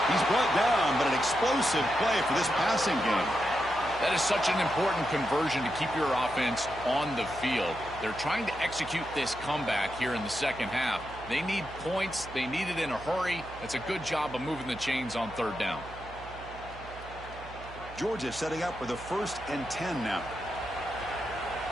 He's brought down, but an explosive play for this passing game. That is such an important conversion to keep your offense on the field. They're trying to execute this comeback here in the 2nd half. They need points. They need it in a hurry. It's a good job of moving the chains on 3rd down. Georgia setting up with a 1st and 10 now.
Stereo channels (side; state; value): right; noise; hum, 15 dB below the sound